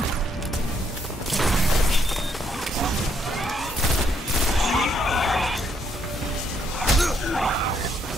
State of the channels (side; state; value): both; normal; correlation 0.72